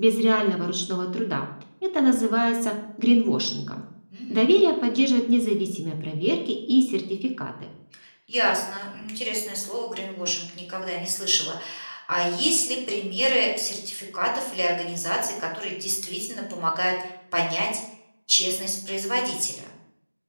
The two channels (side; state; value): both; inverted; correlation -1.00